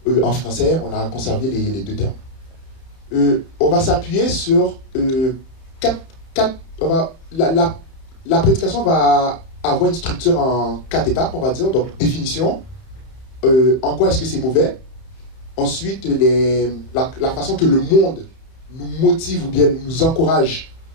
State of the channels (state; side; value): late; right; 31 ms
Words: en français, on a conservé les 2 termes. On va s'appuyer sur 4 la prédication va avoir une structure en 4 étapes, on va dire, donc définition, en quoi est-ce que c'est mauvais, ensuite la façon que le monde nous motive ou bien nous encourage